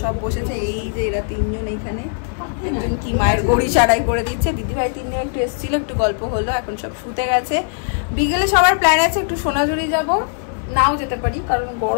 সব বসেছে। এই যে এরা তিনজন এইখানে, একজন কি মায়ের গড়ি সারাই করে দিচ্ছে, দিদিভাই তিনজন একটু এসেছিল, একটু গল্প হলো, এখন সব শুতে গেছে। বিকেলে সবার প্ল্যান আছে একটু সোনাঝুরি যাব, নাও যেতে পারি কারণ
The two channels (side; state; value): right; silent; 66 dB below the other